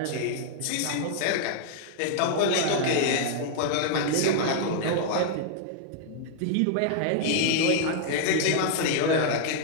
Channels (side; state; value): both; different; correlation -0.01